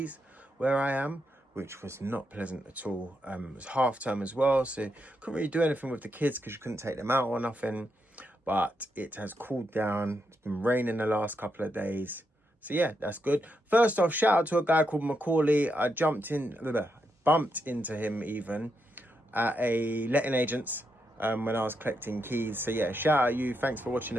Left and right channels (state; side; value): normal; both; correlation 0.82